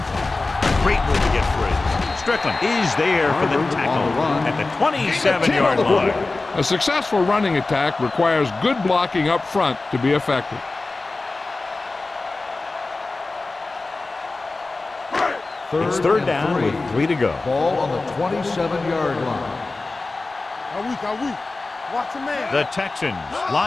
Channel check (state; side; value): quieter; right; 3.4 dB